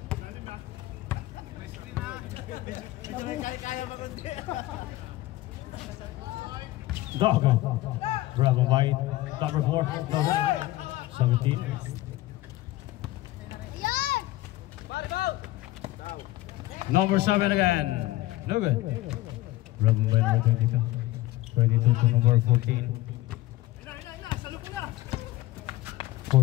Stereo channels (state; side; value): quieter; right; 17.0 dB